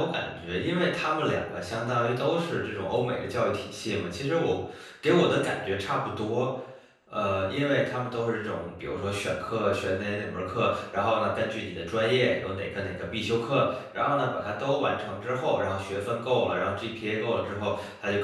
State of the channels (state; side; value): identical; both; correlation 1.00